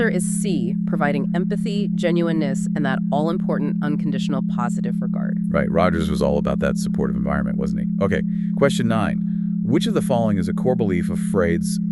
is C, providing empathy, genuineness, and that all-important unconditional positive regard. Right, Rogers was all about that supportive environment, wasn't he? Okay, question 9. Which of the following is a core belief of Freud's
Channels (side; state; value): both; identical; correlation 1.00